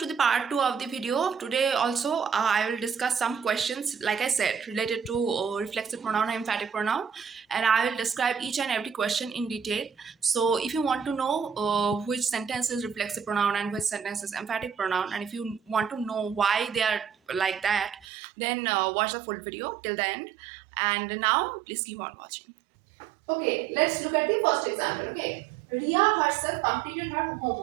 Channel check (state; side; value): drops out; left; at 18.1 s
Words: to the part 2 of the video. Today also I will discuss some questions like I said related to reflexive pronoun and emphatic pronoun, and I will describe each and every question in detail. So if you want to know which sentence is reflexive pronoun and which sentence is emphatic pronoun, and if you want to know why they are like that, then watch the full video till the end. And now please keep on watching. Okay, let's look at the first example. Okay, Ria herself completed her